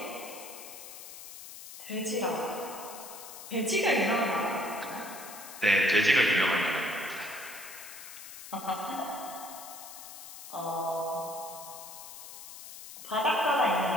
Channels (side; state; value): left; noise; hiss, 13 dB below the sound